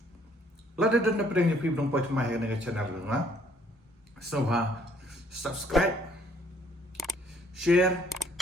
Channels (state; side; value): normal; both; correlation 0.64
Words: lada dan dapat yang pi dong poi mai ke channel nga so ha subscribe share